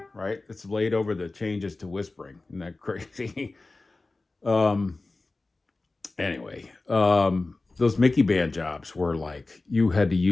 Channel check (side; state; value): right; quieter; 3.3 dB